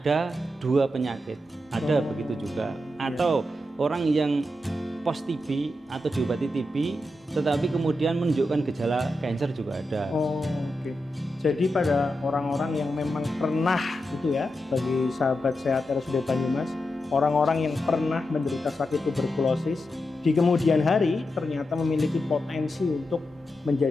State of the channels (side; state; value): both; normal; correlation 0.87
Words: 2 penyakit, ada begitu juga. Atau orang yang post TB atau diobati TB tetapi kemudian menunjukkan gejala kanker juga ada. Jadi pada orang-orang yang memang pernah itu ya, bagi sahabat sehat RSUD Banyumas, orang-orang yang pernah menderita sakit tuberkulosis di kemudian hari ternyata memiliki potensi untuk